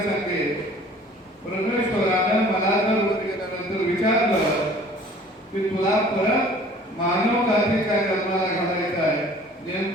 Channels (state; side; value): normal; both; correlation 0.50